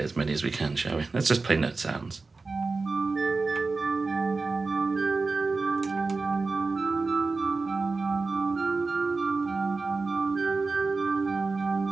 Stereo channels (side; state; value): left; quieter; 3.9 dB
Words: as many as we can, shall we? Let's just play note sounds.